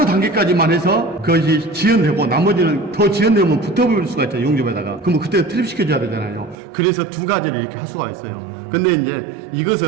단계까지만 해서 그것이 지연되고 나머지는 더 지연되면 붙어볼 수가 있잖아요. 용접에다가. 그러면 그때 트립 시켜줘야 되잖아요. 그래서 두 가지를 이렇게 할 수가 있어요. 근데 이제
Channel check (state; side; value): drops out; left; at 6.6 s